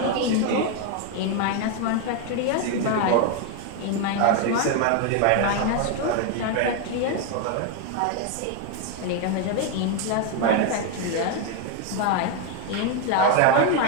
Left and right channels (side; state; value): both; different; correlation 0.01